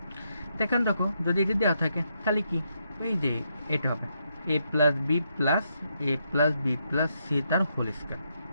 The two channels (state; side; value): inverted; both; correlation -0.79